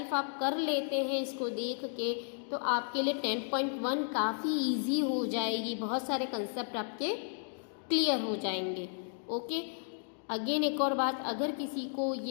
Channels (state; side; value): silent; right; digital silence